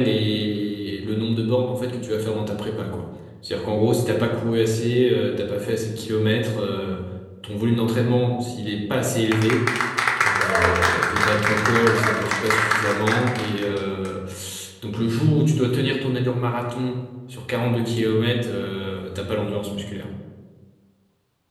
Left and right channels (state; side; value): identical; both; correlation 1.00